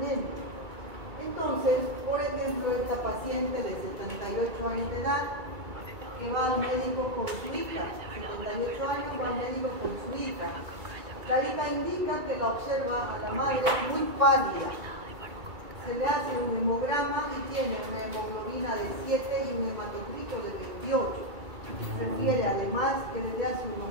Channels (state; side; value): late; left; 2.3 ms